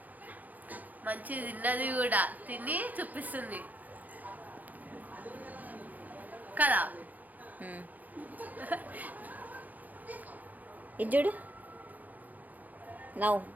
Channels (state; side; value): late; left; 0.082 ms